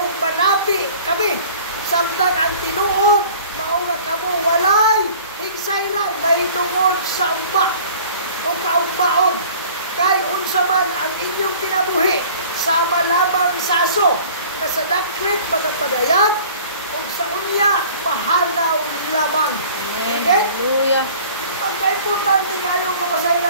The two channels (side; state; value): both; inverted; correlation -0.47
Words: manapi kami samtang ang tinuod mao nga kamo walay higsayran mahitungod sa ugma o kaugmaon. Kay unsa man ang inyong kinabuhi sama lamang sa aso na sa daklit magapadayag o sa unya mahalaw lamang. Amen. Okay? Hallelujah. Pagka-importante kayo